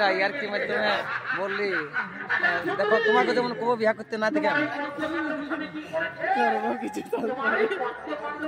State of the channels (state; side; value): identical; both; correlation 1.00